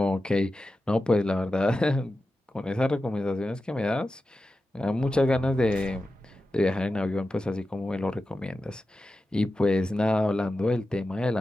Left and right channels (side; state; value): both; normal; correlation 0.92